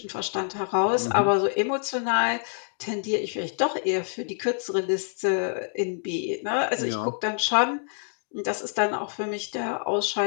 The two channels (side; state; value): right; silent; digital silence